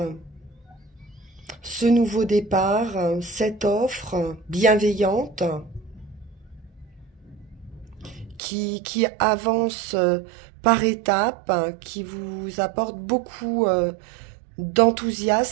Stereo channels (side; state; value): left; drops out; at 8.4 s